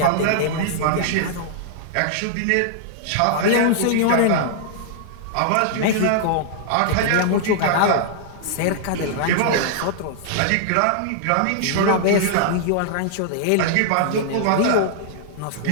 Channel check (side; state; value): both; different; correlation -0.01